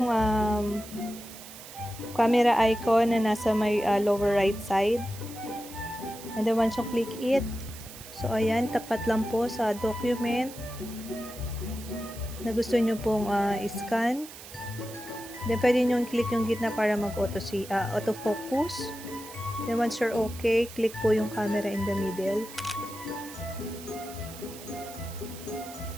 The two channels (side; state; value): right; noise; hiss, 15 dB below the sound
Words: camera icon na nasa may lower right side. And then, once you click it, so, ayan, tapat lang po sa document na gusto nyo pong i-scan. Then, pwede nyo click yung gitna para mag-autofocus. Then, once you're okay, click po yung camera in the middle.